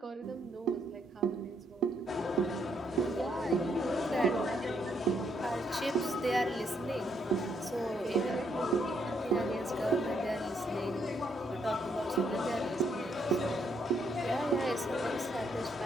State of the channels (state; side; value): normal; both; correlation 0.74